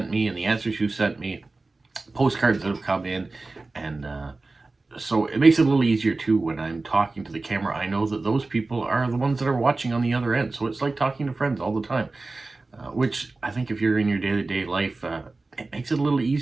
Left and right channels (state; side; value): quieter; left; 3.4 dB